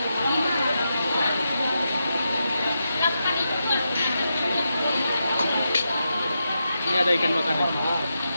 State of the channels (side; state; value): both; inverted; correlation -0.86